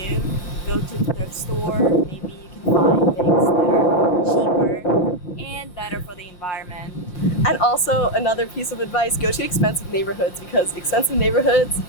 go to the thrift store. Maybe you can find things that are cheaper and better for the environment. And also, another piece of advice, go to expensive neighborhoods, because expensive neighborhoods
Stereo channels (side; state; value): right; late; 5.6 ms